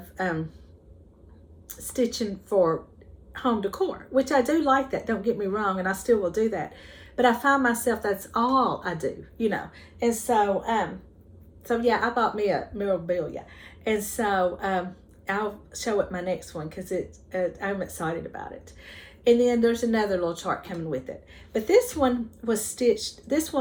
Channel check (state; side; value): identical; both; correlation 1.00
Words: stitching for home decor, which I do like that, don't get me wrong, and I still will do that, but I find myself that's all I do, you know. And so so yeah, I bought me a memorabilia, and so I'll show it my next one because I'm excited about it. And then there's another little chart coming with it, but this one was stitched, this